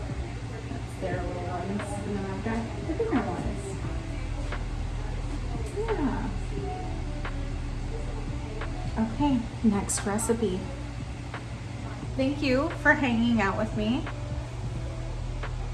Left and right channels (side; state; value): both; identical; correlation 1.00